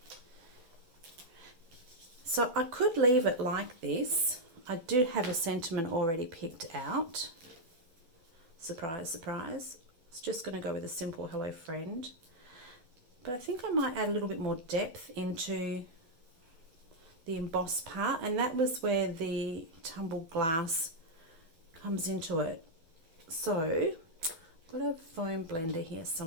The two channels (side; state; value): left; late; 12 ms